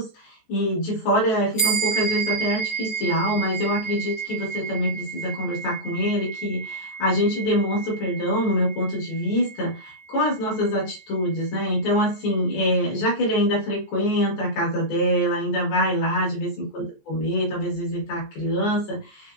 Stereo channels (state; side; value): late; right; 14 ms